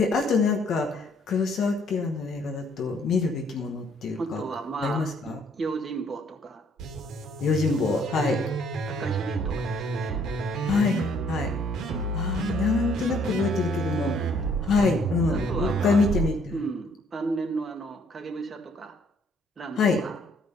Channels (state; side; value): normal; both; correlation 0.64